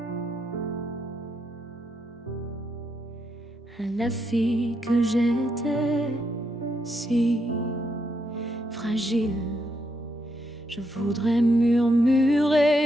La fille que j'étais, si fragile, je voudrais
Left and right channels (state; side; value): normal; both; correlation 0.79